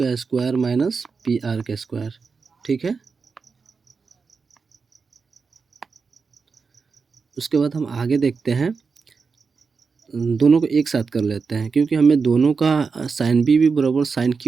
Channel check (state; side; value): quieter; left; 5.0 dB